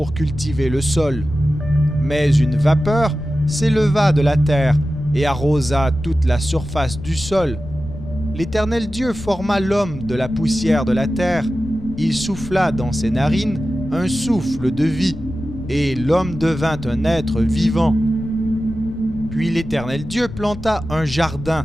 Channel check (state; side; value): noise; left; rumble, 12 dB below the sound